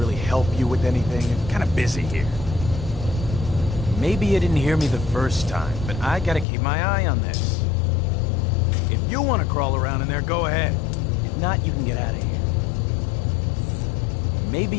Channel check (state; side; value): drops out; right; at 6.5 s